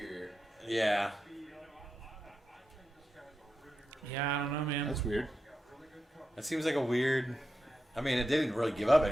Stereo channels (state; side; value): normal; both; correlation 0.88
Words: Yeah. Yeah, I don't know, man. That's weird. That seems like a weird. I mean, it didn't really give up